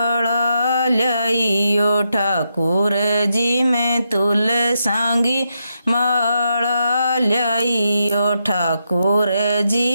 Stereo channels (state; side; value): inverted; both; correlation -0.83